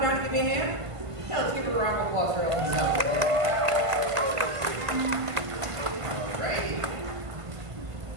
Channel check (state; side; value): late; left; 1.5 ms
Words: down and give me a hand? Yeah, let's give her a round of applause for helping us out today. Alrighty.